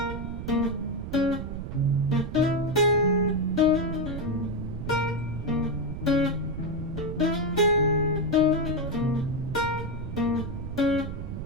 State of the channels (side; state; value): right; noise; rumble, 7 dB below the sound